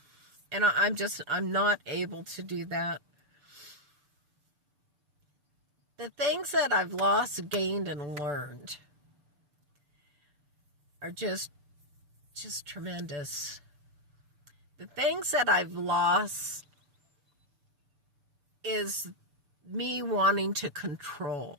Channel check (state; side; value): late; left; 6.9 ms